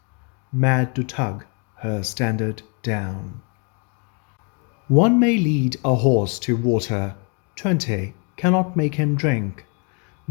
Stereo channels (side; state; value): right; quieter; 36.3 dB